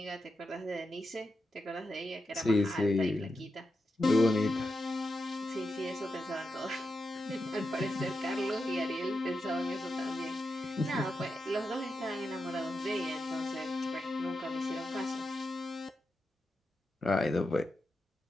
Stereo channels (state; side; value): normal; both; correlation 0.88